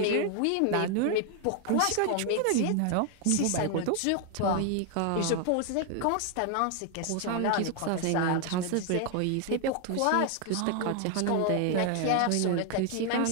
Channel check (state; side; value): different; both; correlation 0.00